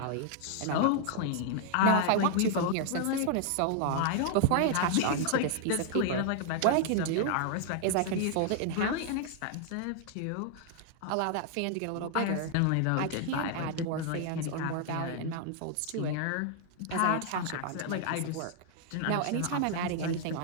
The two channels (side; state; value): both; different; correlation 0.00